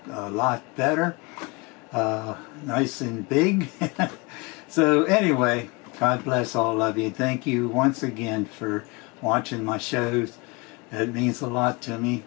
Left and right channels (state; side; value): quieter; right; 27.1 dB